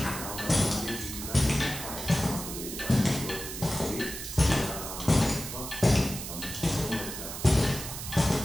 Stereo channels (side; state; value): right; noise; hiss, 8 dB below the sound